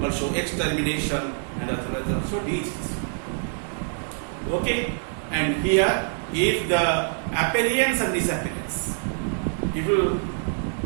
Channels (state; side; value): silent; left; 61 dB below the other